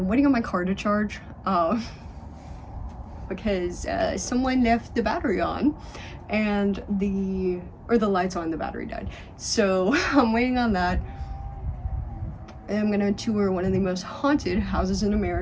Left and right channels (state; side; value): identical; both; correlation 1.00